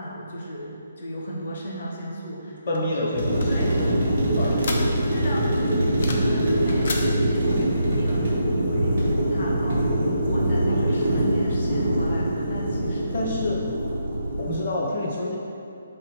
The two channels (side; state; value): both; inverted; correlation -0.79